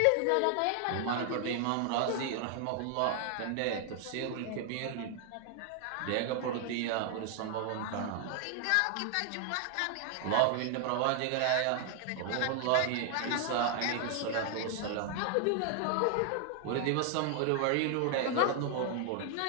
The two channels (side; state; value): both; different; correlation 0.00